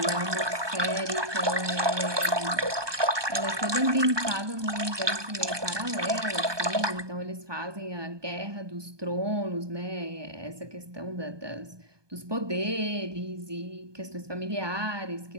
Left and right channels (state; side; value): late; left; 1.2 ms